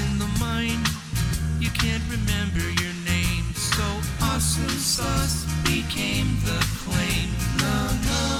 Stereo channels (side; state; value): both; identical; correlation 1.00